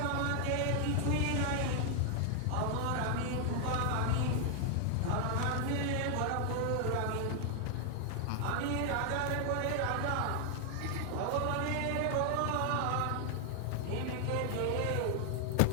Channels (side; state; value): both; different; correlation 0.00